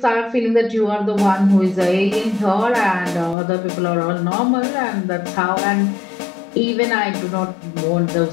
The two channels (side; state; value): right; drops out; at 3.4 s